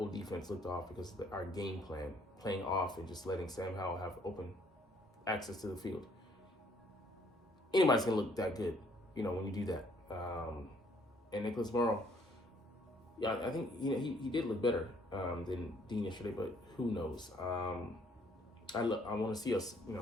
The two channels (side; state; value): both; normal; correlation 0.64